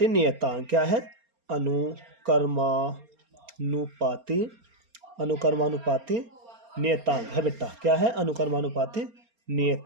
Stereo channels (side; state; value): left; late; 4.3 ms